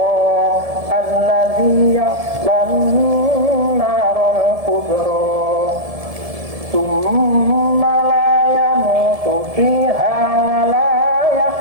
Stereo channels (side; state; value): left; late; 1.7 ms